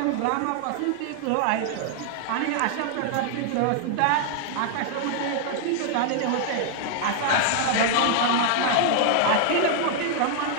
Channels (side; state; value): both; different; correlation 0.00